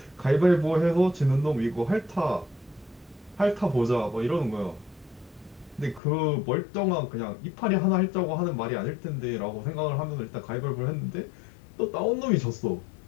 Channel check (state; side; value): drops out; right; at 6.0 s